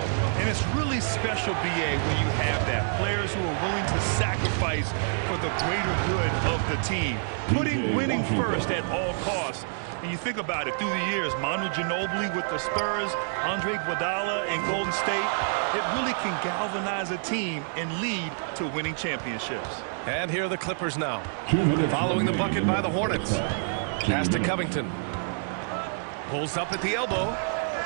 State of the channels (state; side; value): silent; left; digital silence